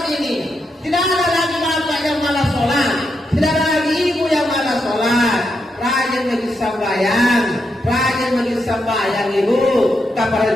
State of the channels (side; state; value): both; normal; correlation 0.83